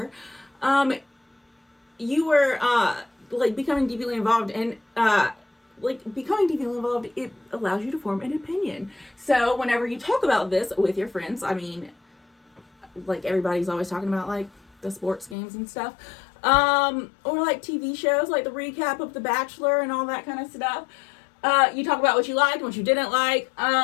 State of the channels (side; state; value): right; drops out; at 15.4 s